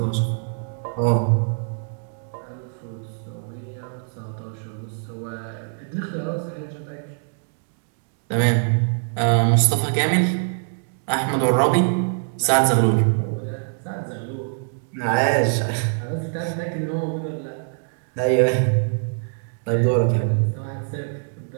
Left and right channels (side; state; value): left; silent; digital silence